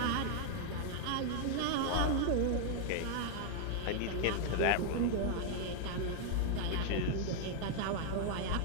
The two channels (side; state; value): both; different; correlation 0.00